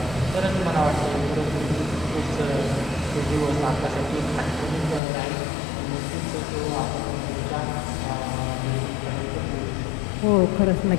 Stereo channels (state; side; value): drops out; right; at 5.0 s